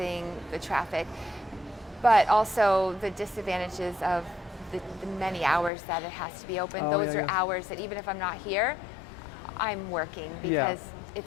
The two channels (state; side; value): drops out; right; at 5.7 s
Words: the traffic. but also the disadvantages of the many hours that it has to be open. Oh, Those yeah, are yeah. hours that even if I'm not here, I'm working because